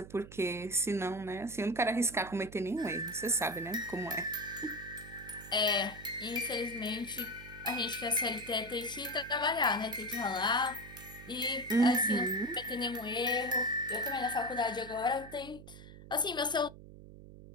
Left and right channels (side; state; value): right; noise; hum, 16 dB below the sound